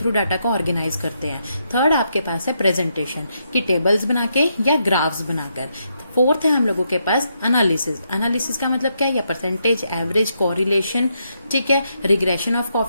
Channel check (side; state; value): both; inverted; correlation -0.79